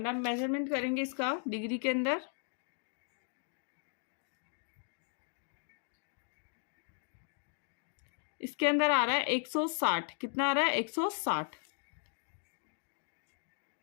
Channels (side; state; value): right; silent; 53 dB below the other